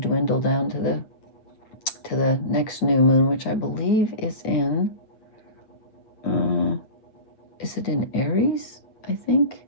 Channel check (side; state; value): right; late; 9.2 ms